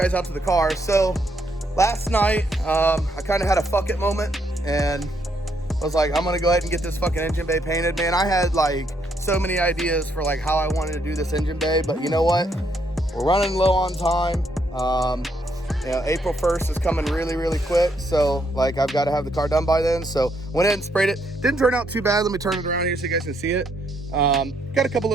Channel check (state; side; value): normal; both; correlation 0.74